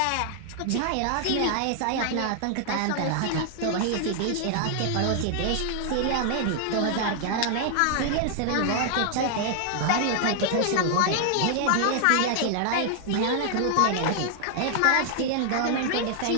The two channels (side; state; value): both; different; correlation 0.00